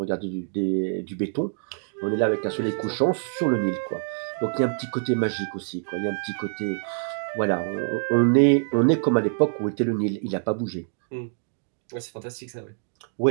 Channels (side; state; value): left; silent; digital silence